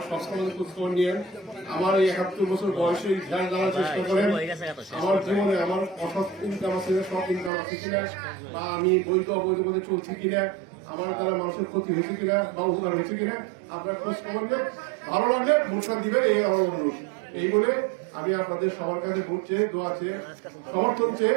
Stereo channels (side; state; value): left; drops out; at 7.5 s